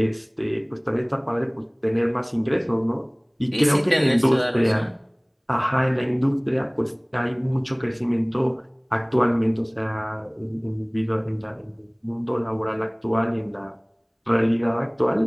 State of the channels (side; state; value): both; identical; correlation 1.00